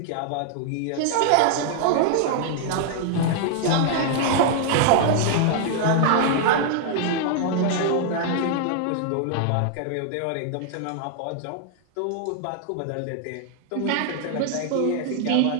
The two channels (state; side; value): different; both; correlation 0.00